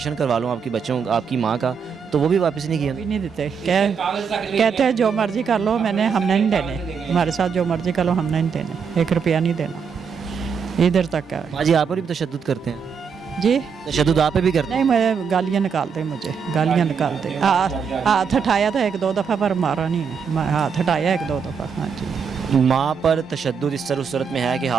کروا لوں آپ کی ماں کا, تو وہ بھی واپس نہیں کیا. نہیں دیتے, کہتے ہیں جو مرضی کر لو, ہم نے نہیں دینے, ہمارے ساتھ جو مرضی کر لو ہم نے نہیں دینے, 1 روپیہ نہیں دینا. ادھر تک ہے. ہاں جی آپ پر بھی تشدد کرتے ہیں؟ جی تشدد آپ پہ بھی کرتے ہیں؟ نہیں, میں گالیاں نکالتے, مجھے گالیاں نکالتے. ہاتھ اٹھایا تھا 1 2 دفعہ پر مارا نہیں ہے, میں ہاتھ اٹھایا 1 2 دفعہ. ہاں جی. ماں پر تشدد اس طرح صورت میں ہے کہ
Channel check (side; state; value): left; quieter; 6.4 dB